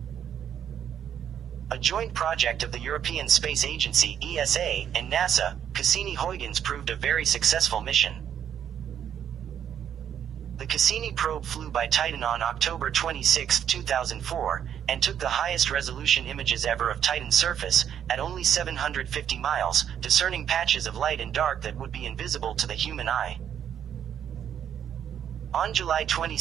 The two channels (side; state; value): left; quieter; 9.2 dB